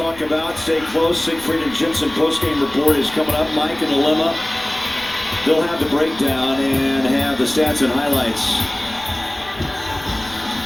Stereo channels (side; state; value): left; noise; rumble, 21 dB below the sound